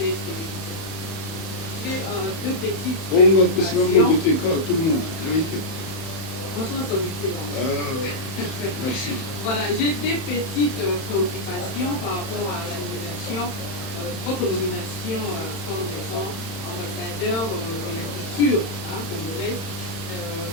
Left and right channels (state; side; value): late; right; 31 ms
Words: J'ai deux petites préoccupations. Tout le monde. Merci. Voilà, j'ai des petites préoccupations par rapport à la nomination, votre nomination comme étant ambassadeur de la culture congolaise.